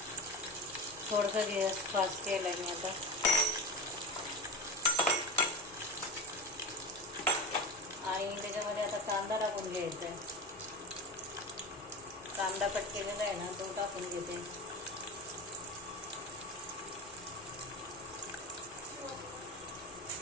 थोडंसं गॅस फास्ट केला मी आता. आणि त्याच्यामध्ये आता कांदा टाकून घ्यायचा आहे, कांदा कट केलेला आहे ना तो टाकून घेते.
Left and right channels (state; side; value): normal; both; correlation 0.26